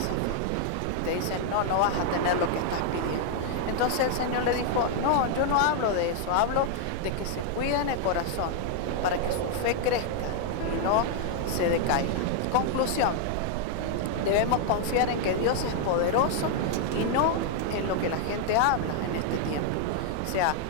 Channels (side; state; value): both; different; correlation 0.00